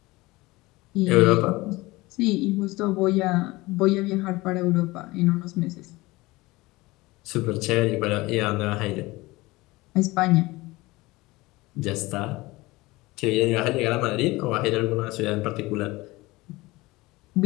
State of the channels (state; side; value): quieter; right; 21.0 dB